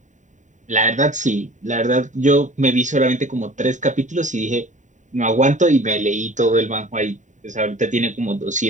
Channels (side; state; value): left; late; 0.36 ms